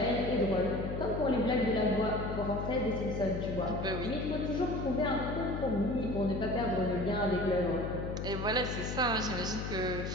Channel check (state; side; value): noise; left; hum, 4 dB below the sound